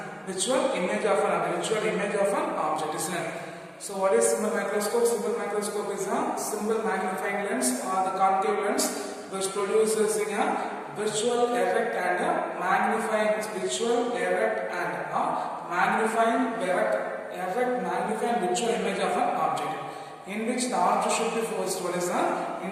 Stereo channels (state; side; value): identical; both; correlation 1.00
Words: Virtual image of an object, isn't it? So what is simple microscope? Simple microscope is a simple magnifying lens or the concave lens which produces a virtual erect and a magnifying virtual erect and a magnifying virtual image of an object, in which the object should be focused. What is that?